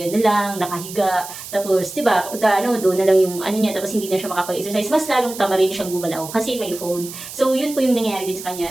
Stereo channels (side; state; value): right; noise; hiss, 12 dB below the sound